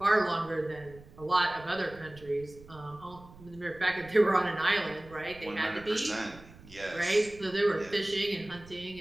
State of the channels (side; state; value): right; noise; rumble, 20 dB below the sound